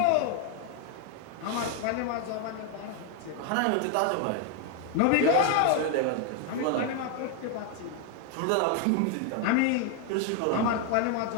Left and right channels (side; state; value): both; different; correlation 0.01